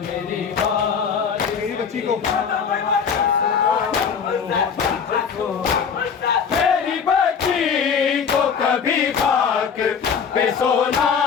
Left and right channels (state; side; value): quieter; right; 6.6 dB